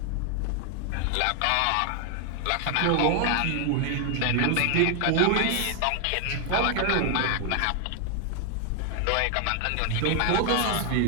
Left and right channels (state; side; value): different; both; correlation 0.00